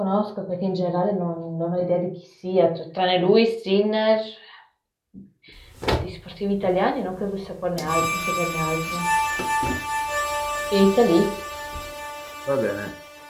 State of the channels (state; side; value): identical; both; correlation 1.00